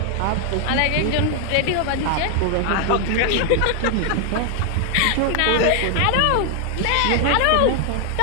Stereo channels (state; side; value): different; both; correlation 0.00